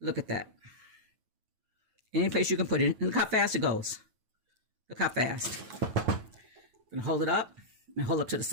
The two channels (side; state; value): left; late; 9.1 ms